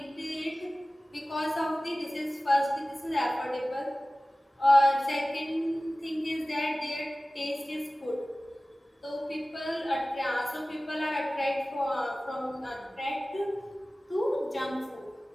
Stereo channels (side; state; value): both; normal; correlation 0.97